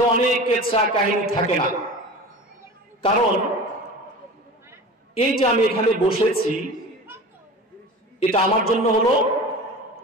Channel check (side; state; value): both; normal; correlation 0.35